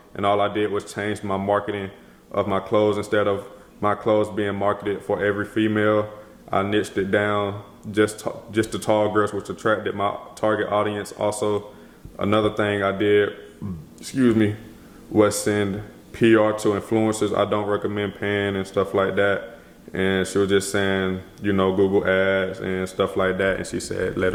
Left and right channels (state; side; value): identical; both; correlation 1.00